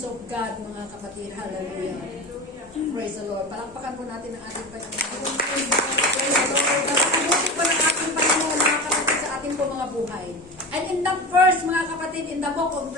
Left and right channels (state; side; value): normal; both; correlation 0.27